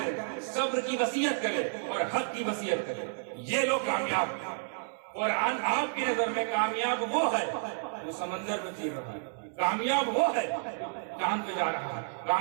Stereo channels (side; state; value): left; silent; digital silence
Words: صبر کی وصیت کرے اور حق کی وصیت کرے. یہ لوگ کامیاب. قرآن آپ کی نظر میں کامیاب وہ ہے جو سمندر میں چیر رہا ہے، کامیاب وہ ہے جو چاند پہ جا رہا ہے،